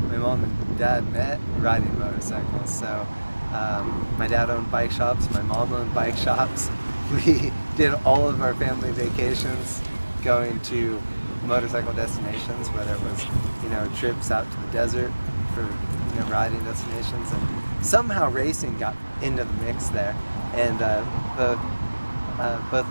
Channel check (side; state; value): both; inverted; correlation -1.00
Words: my mom and dad met riding motorcycles. So my dad owned bike shops, my mom owned bike shops. We did all of our family vacations going to motorcycle destinations, whether it was trips out to the desert for riding destinations, and somehow racing got into the mix there. And both